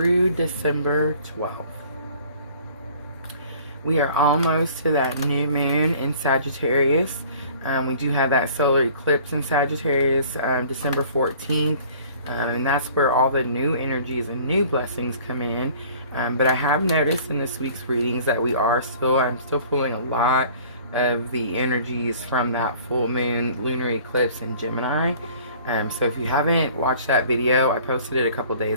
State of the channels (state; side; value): inverted; both; correlation -0.51